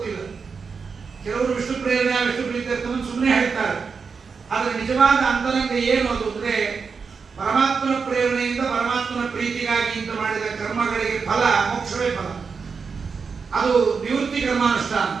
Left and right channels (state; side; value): quieter; left; 5.4 dB